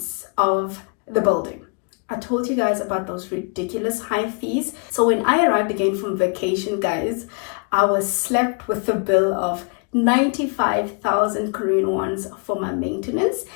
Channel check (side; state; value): right; quieter; 38.5 dB